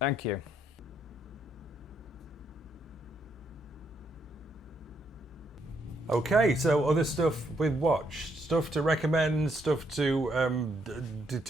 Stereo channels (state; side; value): normal; both; correlation 0.74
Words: you. Okay, so other stuff we've watched, stuff to recommend, stuff to